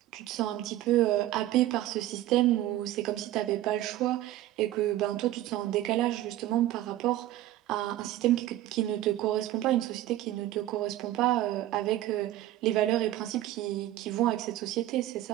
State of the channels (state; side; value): quieter; left; 14.4 dB